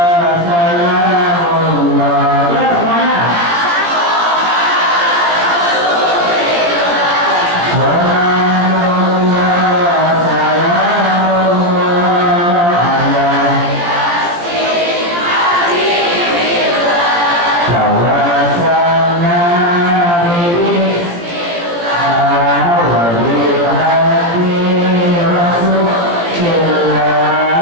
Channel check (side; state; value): left; late; 17 ms